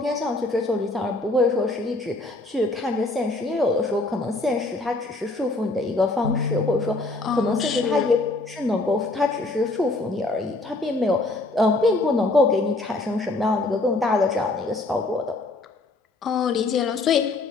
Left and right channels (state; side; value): quieter; right; 3.0 dB